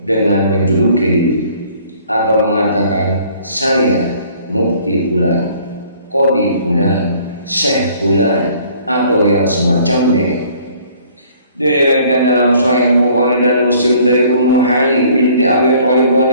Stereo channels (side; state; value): both; inverted; correlation -0.57